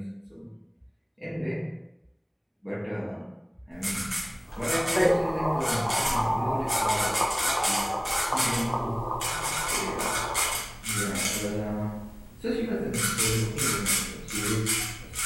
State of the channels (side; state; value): both; identical; correlation 1.00